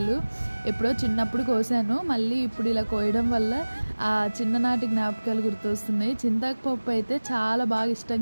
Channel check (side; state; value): both; inverted; correlation -1.00